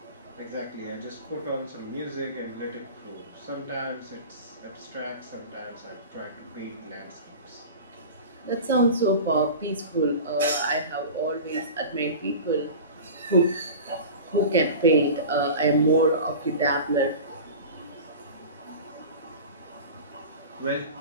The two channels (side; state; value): both; inverted; correlation -0.34